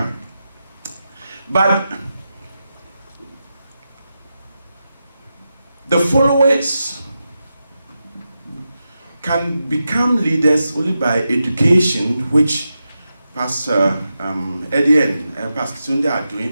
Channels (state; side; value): inverted; both; correlation -0.89